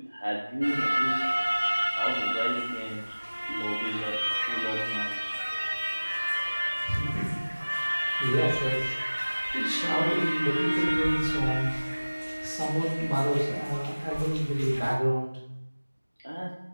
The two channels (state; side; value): inverted; both; correlation -1.00